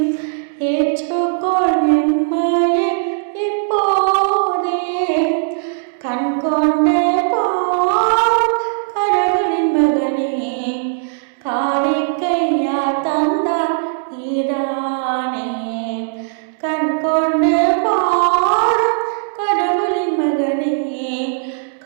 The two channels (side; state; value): left; silent; 68 dB below the other